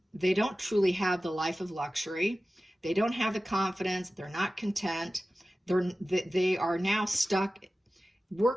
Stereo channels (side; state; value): both; normal; correlation 0.95